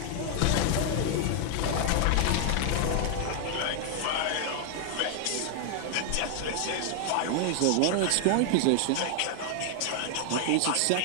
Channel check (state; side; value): different; both; correlation 0.00